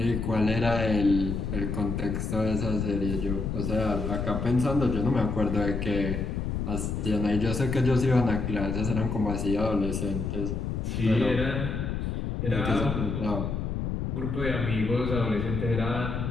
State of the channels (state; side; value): noise; left; rumble, 2 dB below the sound